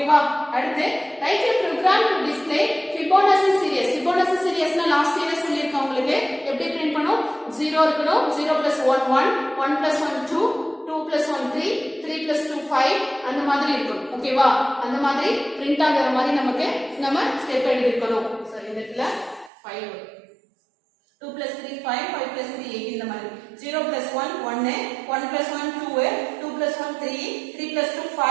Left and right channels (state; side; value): drops out; left; at 19.5 s